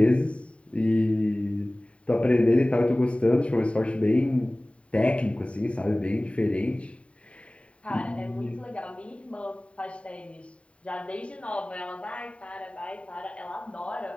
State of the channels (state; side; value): late; right; 0.062 ms